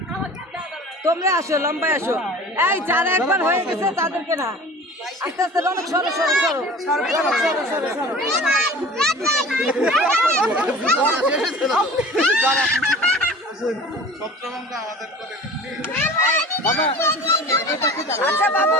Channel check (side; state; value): both; normal; correlation 0.40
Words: তোমরা আসো, লম্বায় আসো। এই যারা একবার হয়ে গেছে তাদেরকে না, আস্তে আস্তে অনেক সরো সরো সরো সরো সরো সরো সরো। আচ্ছা